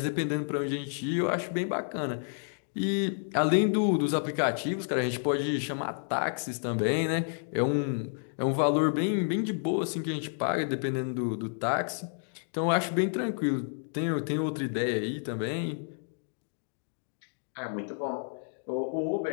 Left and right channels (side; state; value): right; silent; digital silence